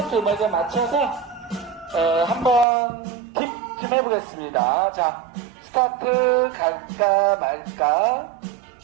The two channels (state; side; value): drops out; left; at 2.7 s